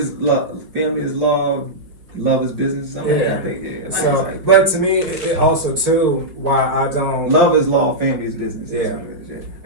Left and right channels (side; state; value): left; late; 4.8 ms